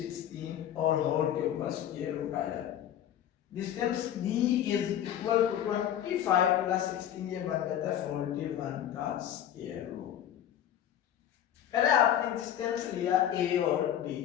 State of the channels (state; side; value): quieter; right; 10.7 dB